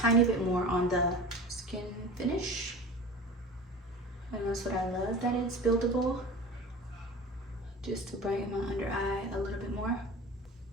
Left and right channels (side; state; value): both; normal; correlation 0.36